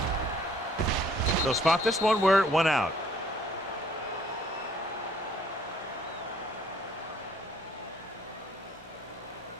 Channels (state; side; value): normal; both; correlation 0.60